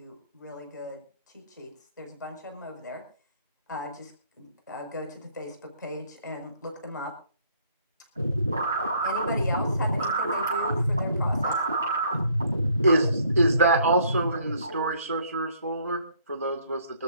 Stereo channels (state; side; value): inverted; both; correlation -0.63